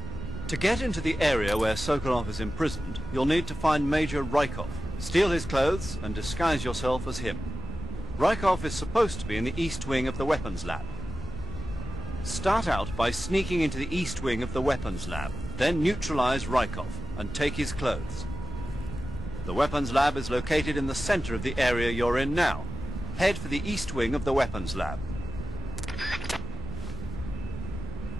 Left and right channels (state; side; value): normal; both; correlation 0.93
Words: To get into the area where Sokolov is imprisoned, you'll need to find Major Raikov, steal his clothes, and disguise yourself as him. Raikov is supposed to be in the east wing of the weapons lab. Start out by sneaking into the east wing of the weapons lab, then neutralize Raikov and take his clothes. The weapons lab is located in the center of the area you're in now. Head for the east wing of the weapons lab.